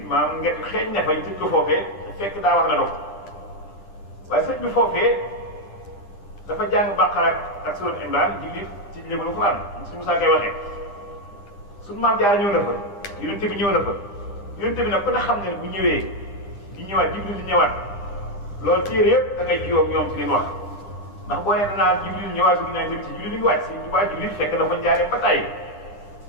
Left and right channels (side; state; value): right; late; 10 ms